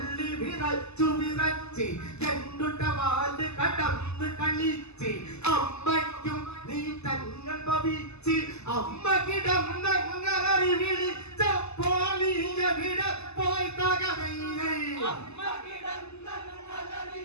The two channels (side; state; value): right; late; 0.80 ms